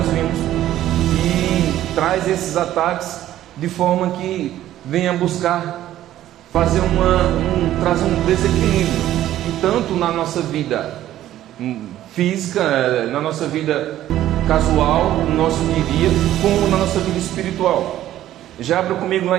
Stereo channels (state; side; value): quieter; left; 13.1 dB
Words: vimos e traz esses ataques de forma que venha buscar fazer trazer um desequilíbrio, e tanto na nossa vida física, na nossa vida casual, no nosso dia a dia, como na nossa vida espiritual. Já abra comigo lá